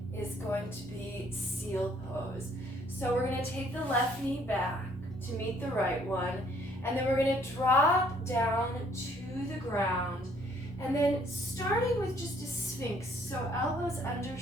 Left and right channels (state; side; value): normal; both; correlation 0.63